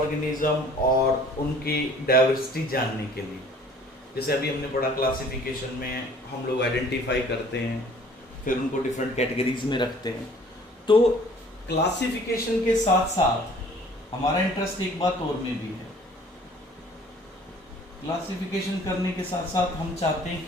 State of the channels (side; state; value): both; normal; correlation 0.53